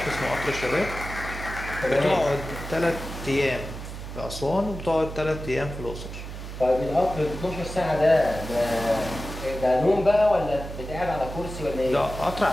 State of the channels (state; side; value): noise; right; hum, 9 dB below the sound